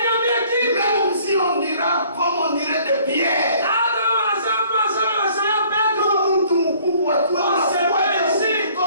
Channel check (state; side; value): inverted; both; correlation -0.57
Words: Même si on dira comme on dirait de Pierre.